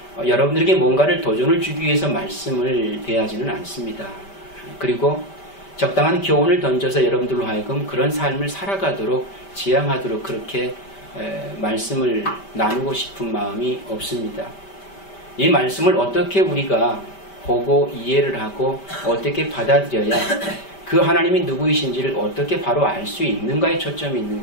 여러분들에게 뭔가를 도전을 주기 위해서 말씀을 대하지는 않습니다. 그리고 적당한 교훈을 던져서 여러분들로 하여금 그런 삶을 살아가도록 지향하도록 그렇게 말씀을 나누고 싶은 마음이 없습니다. 이 말씀을 어떻게 우리가 보고 이해를 하고 어떻게 받아들여야 그 하나님이 누구이신지를 어떻게 바로 알 수 있는가에 초점이 있는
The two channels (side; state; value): right; late; 5.1 ms